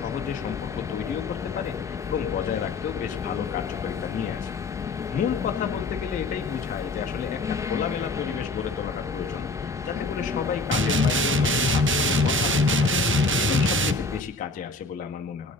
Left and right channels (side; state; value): right; quieter; 3.2 dB